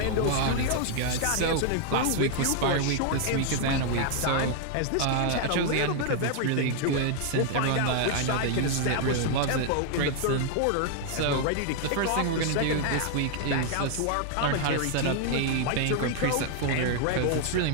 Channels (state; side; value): different; both; correlation 0.00